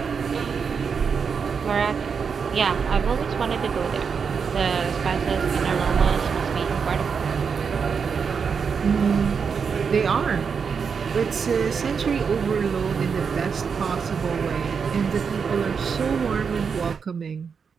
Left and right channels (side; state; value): left; quieter; 6.1 dB